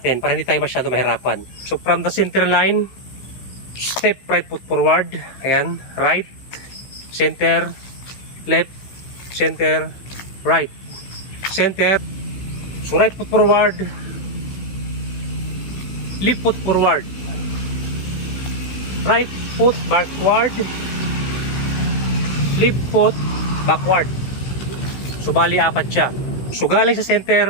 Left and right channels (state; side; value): late; right; 15 ms